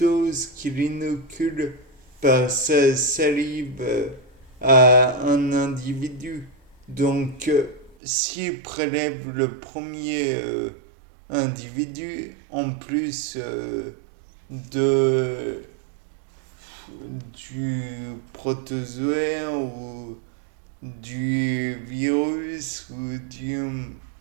ce qu'il inocule par sa salive à un individu. Donc, s'il prélève le premier individu, en plus de, du protozoaire ou du virus ou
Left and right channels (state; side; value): drops out; left; at 8.0 s